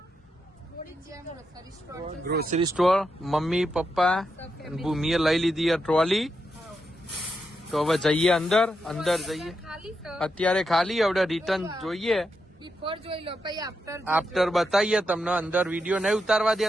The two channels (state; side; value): normal; both; correlation 0.84